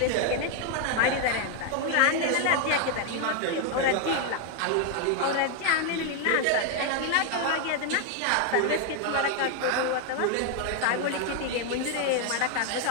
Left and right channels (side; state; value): both; different; correlation 0.00